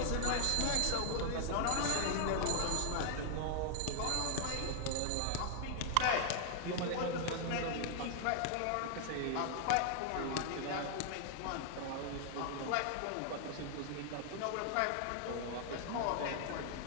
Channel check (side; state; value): both; different; correlation 0.00